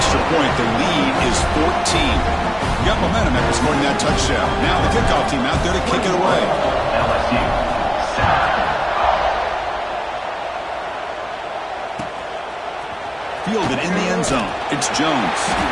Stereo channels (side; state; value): both; identical; correlation 1.00